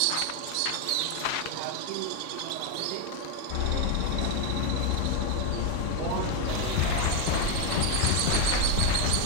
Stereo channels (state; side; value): different; both; correlation 0.02